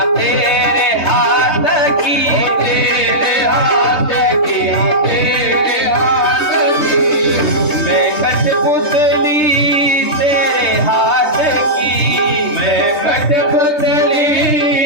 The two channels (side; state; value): right; late; 3.2 ms